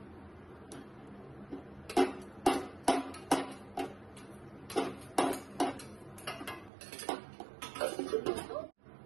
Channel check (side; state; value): left; drops out; at 6.7 s